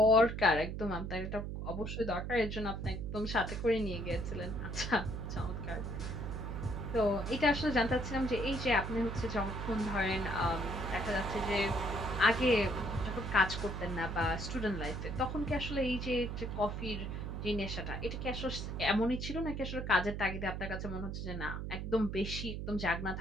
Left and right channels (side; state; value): right; noise; hum, 5 dB below the sound